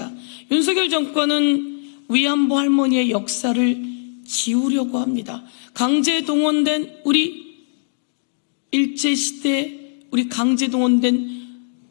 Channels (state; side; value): silent; right; digital silence